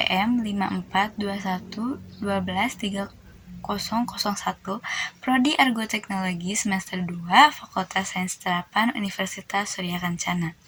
5421121301, Prodi Argoteknologi semester 2, Fakultas Sains Terapan Universitas Surya Kencana.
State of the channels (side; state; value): both; identical; correlation 1.00